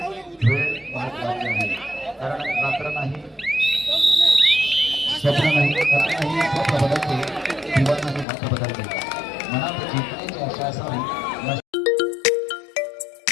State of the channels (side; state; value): right; drops out; at 8.2 s